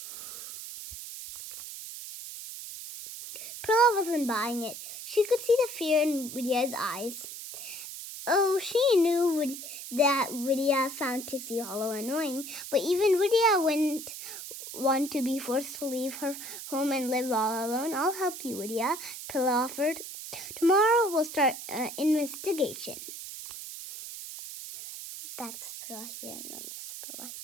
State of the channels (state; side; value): noise; right; hiss, 10 dB below the sound